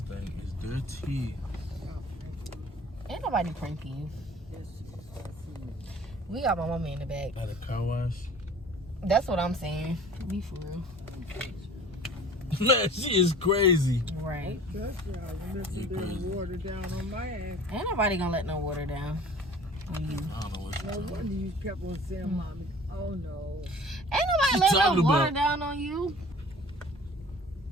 thing is dirty. Ain't nobody pranking you. We got my mama in the back. At a car wash. That's what I'm saying. Be for real. Man, she is crazy. Right. Water down on my ass. Ain't nobody gonna let no water down on you. I don't know what No wonder you kept on saying, Mommy, oh no. Ain't nobody letting no water down on you.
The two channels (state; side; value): normal; both; correlation 0.46